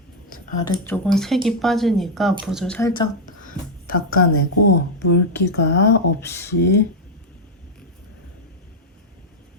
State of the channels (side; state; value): both; normal; correlation 0.00